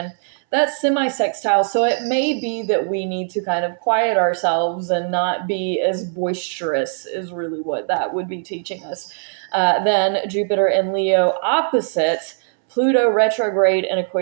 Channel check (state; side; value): silent; left; 64 dB below the other